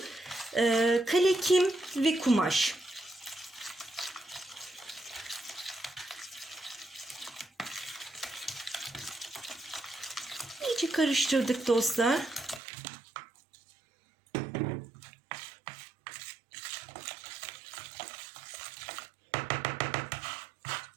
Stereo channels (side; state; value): left; drops out; at 12.6 s